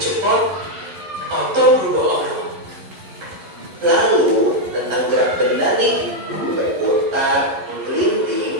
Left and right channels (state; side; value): late; left; 11 ms